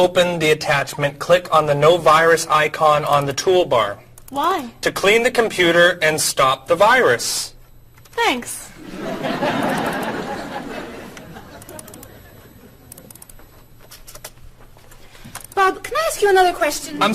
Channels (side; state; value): both; identical; correlation 1.00